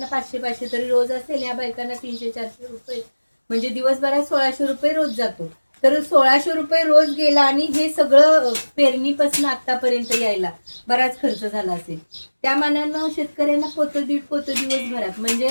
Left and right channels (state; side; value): inverted; both; correlation -1.00